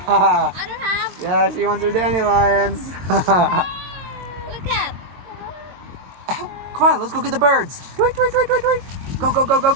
I don't have. Yeah, she wants her dandelions. Look at. Come on, let's go get the birds. Tweet, tweet, tweet, tweet, tweet. Go, go, go, go,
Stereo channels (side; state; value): left; late; 22 ms